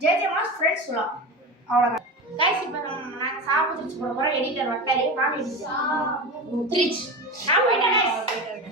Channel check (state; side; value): normal; both; correlation 0.25